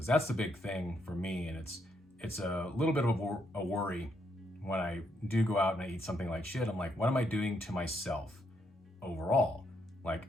that's the big thing for me. And it's a little bit of a worry when I do go out and I eat something like shit. I'm like, what am I doing to myself overall? Like,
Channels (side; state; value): both; normal; correlation 0.76